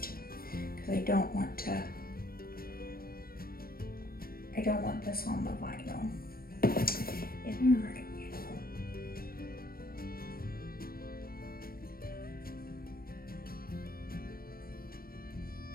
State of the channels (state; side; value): late; right; 0.43 ms